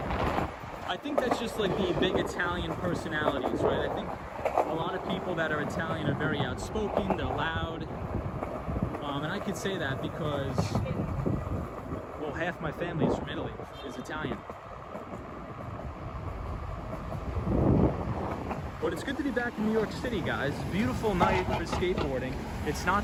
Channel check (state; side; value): identical; both; correlation 1.00